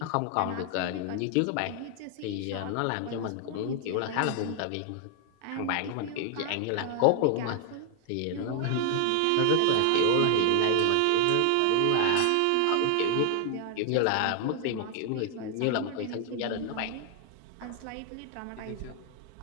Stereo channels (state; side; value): different; both; correlation 0.00